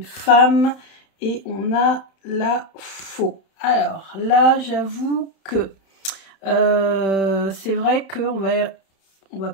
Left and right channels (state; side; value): late; right; 31 ms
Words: femme et on a la faux. Alors là, j'avoue que c'est vrai qu'on va